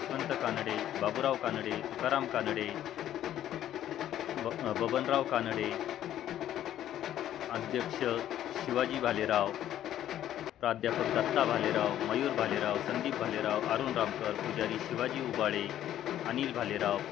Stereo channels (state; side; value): quieter; right; 11.8 dB